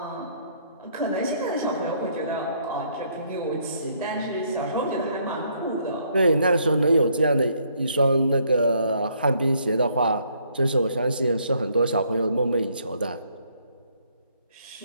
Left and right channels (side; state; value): both; inverted; correlation -0.68